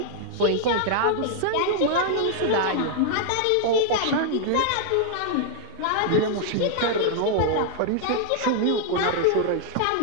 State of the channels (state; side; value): different; both; correlation -0.01